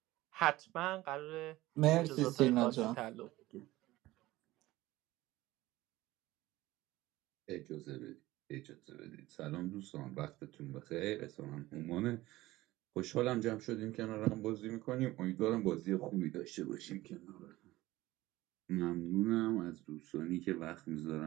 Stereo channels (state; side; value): quieter; left; 17.6 dB